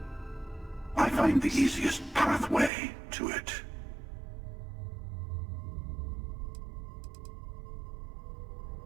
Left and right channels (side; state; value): left; drops out; at 2.7 s